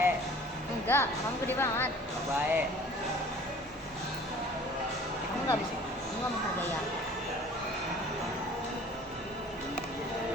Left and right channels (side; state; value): both; normal; correlation 0.48